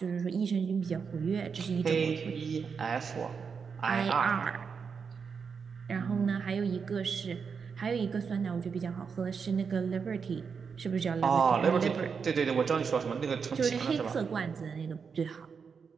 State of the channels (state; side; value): quieter; left; 5.9 dB